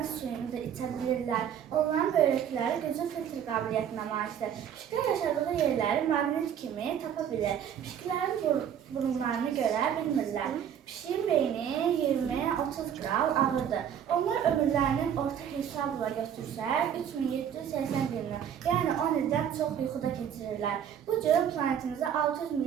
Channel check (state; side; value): quieter; left; 8.9 dB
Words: suyunu da içə bilirlər. Onların böyrəkləri güclü filtr qabiliyyətinə malikdir. Pişiklər yaşadığı yerləri maqnit kimi tapa bilir. Pişiklərin burunlarını görə bilmirlər. Pişiyin beyni 20-30 qram ağırdır. Onlar ömürlərinin orta hesabla götürsək 3780 gündən, yəni 10 ildən çox yuxuda keçirirlər. Bu cür planetimizdə 600